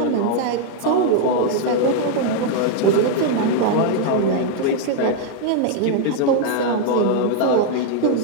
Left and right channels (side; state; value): both; different; correlation 0.00